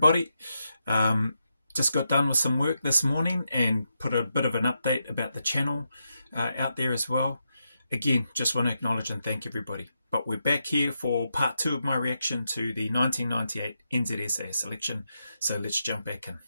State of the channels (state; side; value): inverted; both; correlation -0.84